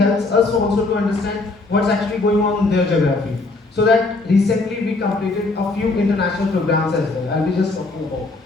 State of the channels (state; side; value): quieter; right; 3.3 dB